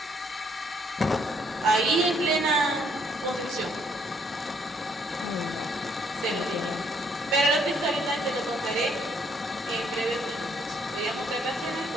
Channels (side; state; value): both; normal; correlation 0.68